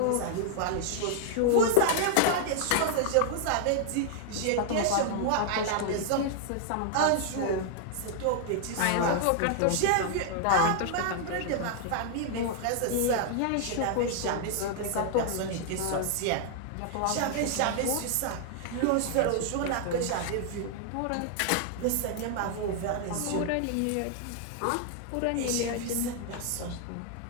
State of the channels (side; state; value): both; different; correlation -0.01